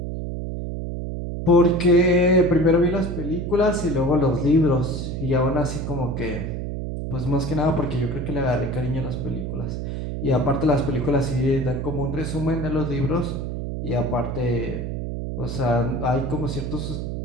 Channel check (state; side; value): noise; right; hum, 4 dB below the sound